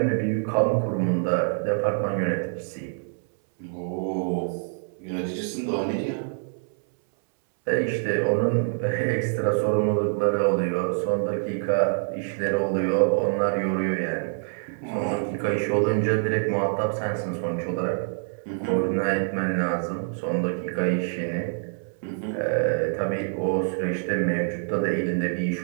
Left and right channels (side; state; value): left; silent; 61 dB below the other